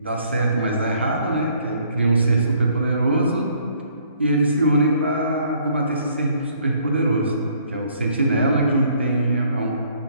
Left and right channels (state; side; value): inverted; both; correlation -0.63